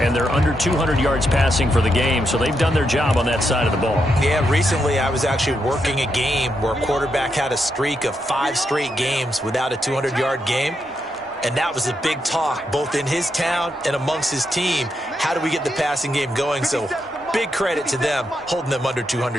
they're under 200 yards passing for the game, so they've done their job on that side of the ball. Yeah, recently I was actually working a game where a quarterback had a streak of 5 straight games without a 200-yard game, and that was a big talk both in his town and amongst his team. How do we get the passing game going? So big credit to them holding them under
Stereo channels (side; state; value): both; normal; correlation 0.82